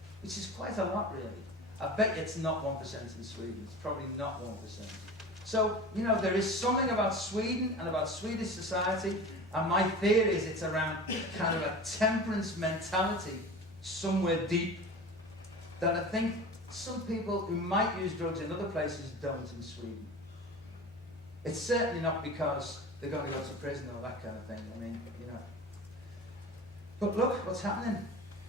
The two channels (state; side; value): normal; both; correlation 0.34